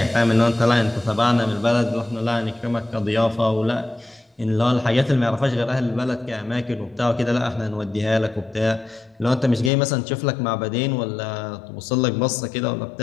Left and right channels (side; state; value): right; drops out; at 9.7 s